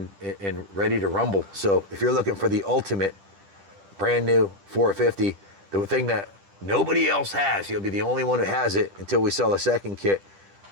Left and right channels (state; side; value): late; left; 10 ms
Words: ready to rumble. So if you're looking for the ultimate brand new 450, the thing that nobody else has, you'll be the only one who has it until we sell a second kit.